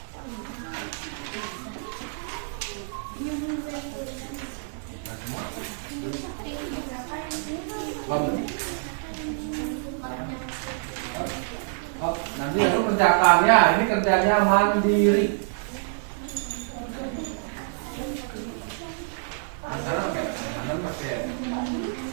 Nanti aku kerjakannya, ini kerjanya mandiri. Ada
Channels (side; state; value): left; silent; digital silence